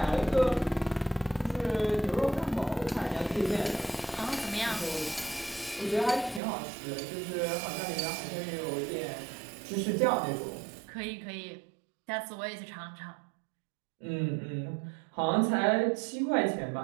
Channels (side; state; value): left; drops out; at 6.4 s